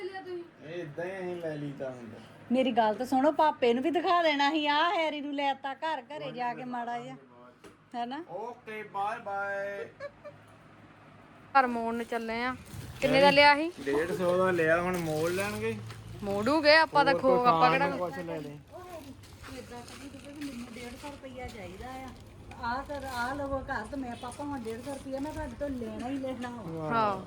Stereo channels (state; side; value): identical; both; correlation 1.00